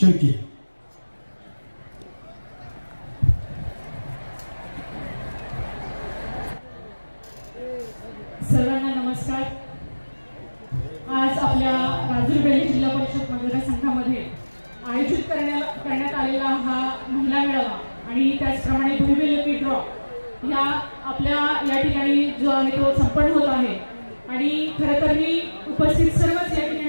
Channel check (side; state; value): both; inverted; correlation -1.00